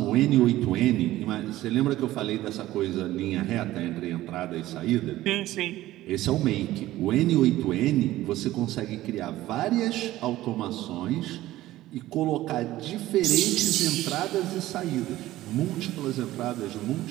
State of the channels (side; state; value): left; quieter; 15.7 dB